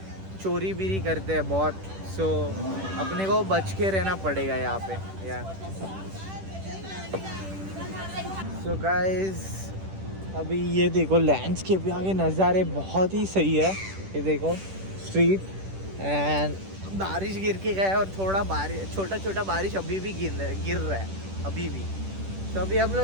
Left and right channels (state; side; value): late; left; 10 ms